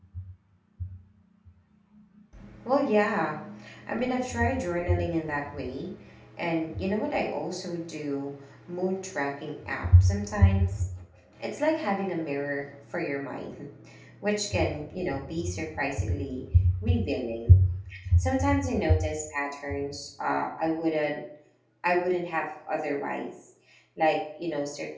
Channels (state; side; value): identical; both; correlation 1.00